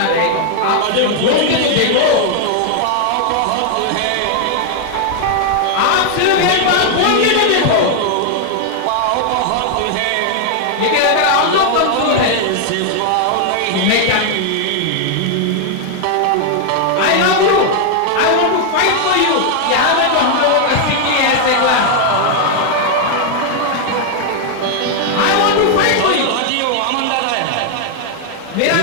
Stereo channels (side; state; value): both; different; correlation 0.00